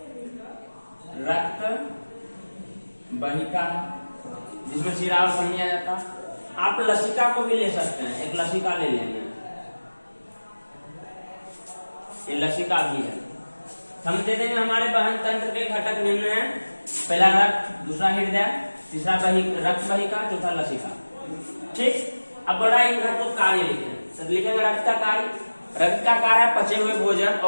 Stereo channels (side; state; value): both; inverted; correlation -1.00